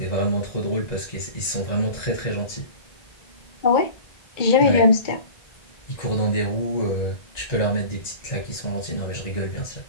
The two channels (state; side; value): late; right; 1.9 ms